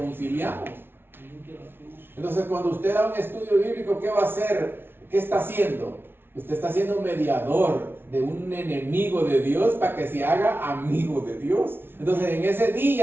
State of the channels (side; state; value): left; late; 0.11 ms